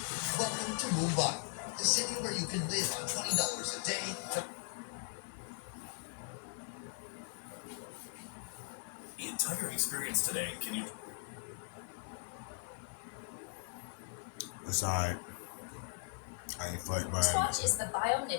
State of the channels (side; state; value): right; silent; digital silence